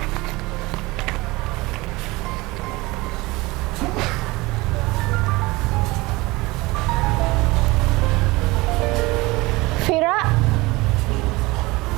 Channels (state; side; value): quieter; left; 22.0 dB